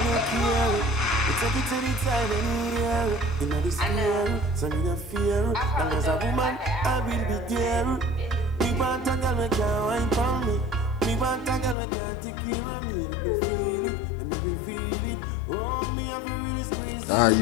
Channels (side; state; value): right; drops out; at 11.8 s